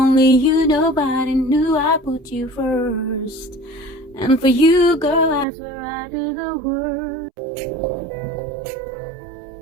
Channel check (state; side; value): drops out; left; at 5.5 s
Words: you, nobody knew I put you first. And for you, girl, I swear I do the worst.